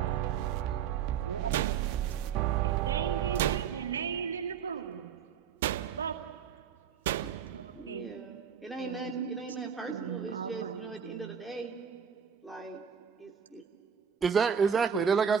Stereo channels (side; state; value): left; quieter; 7.5 dB